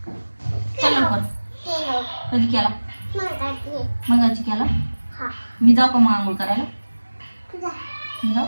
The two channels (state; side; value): inverted; both; correlation -1.00